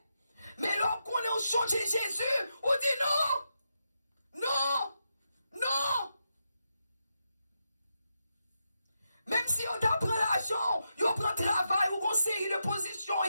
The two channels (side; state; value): both; inverted; correlation -0.85